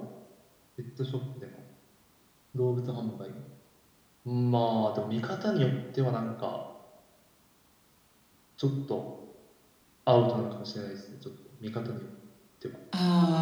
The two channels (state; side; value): identical; both; correlation 1.00